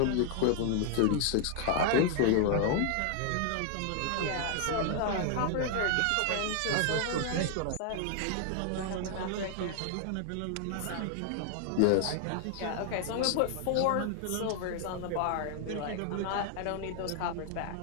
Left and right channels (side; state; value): both; different; correlation 0.00